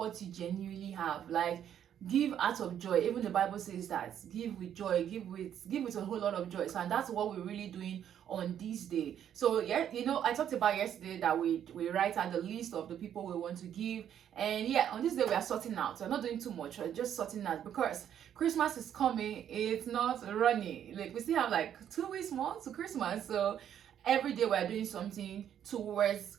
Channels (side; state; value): left; quieter; 9.7 dB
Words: you genuinely have. Like, give out of joy. Even the Bible says that give with joy, give with a whole lot of joy. So, and that's what we're really doing on this day. So yeah, I talked about yesterday that we write out the list of the people we want to give, and yeah, on this day we are sorting out. We're not doing too much, we're just sorting out because Christmas is coming. It's not running, like we still have like 2 weeks more to Christmas. So every day we're doing something towards